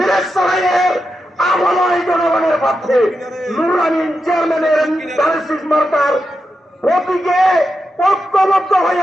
আমলয় জনগণের প্রার্থী নুরুল আমিন চেয়ারম্যানের ধানের শীষ মার্কার প্রতীকে ঐক্যবদ্ধ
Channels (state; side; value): normal; both; correlation 0.88